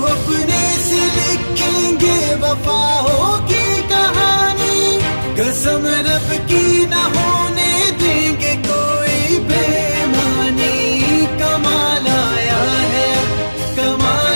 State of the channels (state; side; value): inverted; both; correlation -1.00